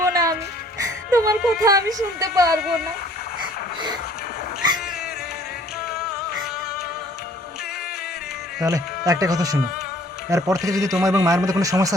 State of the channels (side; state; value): both; normal; correlation 0.57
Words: না, আমি তোমার কথা আমি শুনতে পারবো না। তাহলে একটা কথা শোনো, এরপর থেকে যদি তোমার এবং মায়ের মধ্যে কোনো